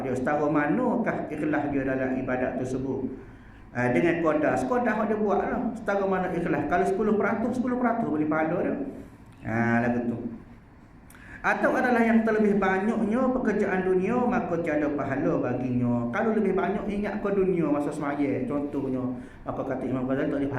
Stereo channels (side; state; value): both; identical; correlation 1.00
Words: dia, setara manakah ikhlas dia dalam ibadat tersebut. Dengan qadar dia buat lah, setara mana ikhlas. Kalau 10% boleh pahala dia. Lagu tu. Atau adalah yang terlebih banyaknya pekerjaan dunia, maka tiada pahala baginya. Kalau lebih banyak ingat ke dunia masa semaya contohnya, maka kata Imam Ghazali tak ada